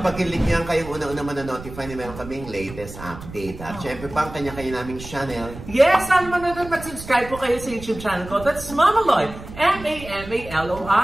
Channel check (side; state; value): right; noise; rumble, 14 dB below the sound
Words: pag-click niyan, kayong una-una man-notify na meron kaming latest update. At syempre pa ang kanya-kanya naming channel. Yes, saan man na mag-subscribe po kayo sa YouTube channel ko. That's Mama Loy,